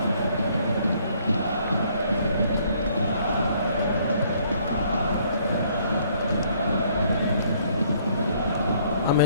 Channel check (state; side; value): inverted; both; correlation -0.64